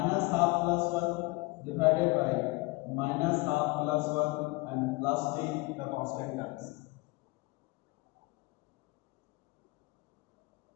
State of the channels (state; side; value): quieter; right; 24.1 dB